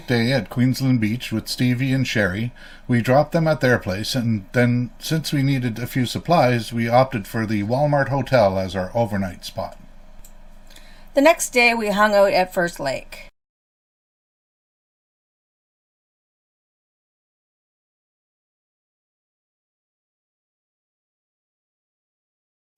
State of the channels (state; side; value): identical; both; correlation 1.00